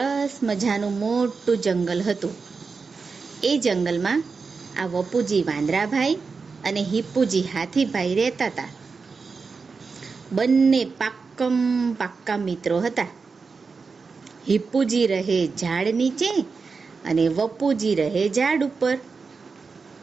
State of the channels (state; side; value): quieter; left; 4.8 dB